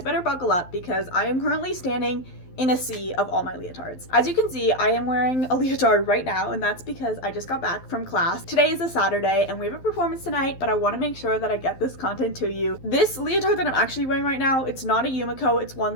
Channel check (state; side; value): late; right; 12 ms